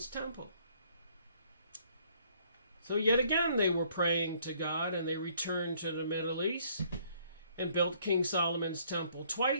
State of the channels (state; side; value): inverted; both; correlation -0.63